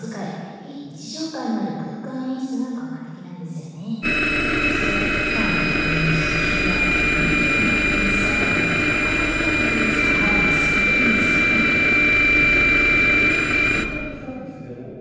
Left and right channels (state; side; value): identical; both; correlation 1.00